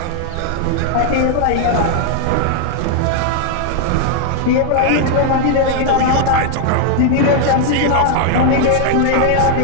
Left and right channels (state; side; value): different; both; correlation 0.00